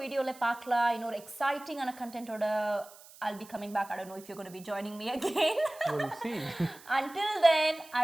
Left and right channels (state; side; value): noise; right; hiss, 21 dB below the sound